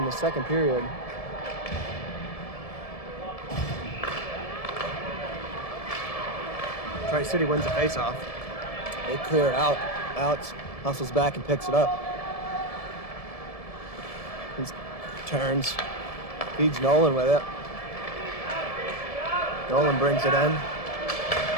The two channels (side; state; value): right; late; 1.7 ms